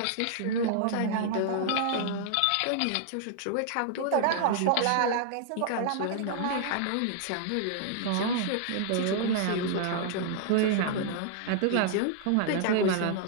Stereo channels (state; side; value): different; both; correlation -0.01